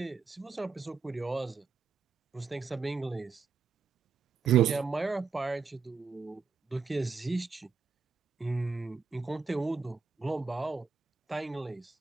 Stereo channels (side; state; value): left; quieter; 5.2 dB